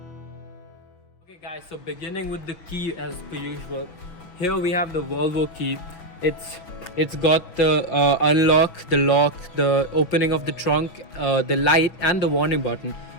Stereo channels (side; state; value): right; late; 6.1 ms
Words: Okay guys, so beginning with the key as per usual. Here we have the Volvo key. It's got the unlock, the lock, the opening of the trunk, the light and the warning button.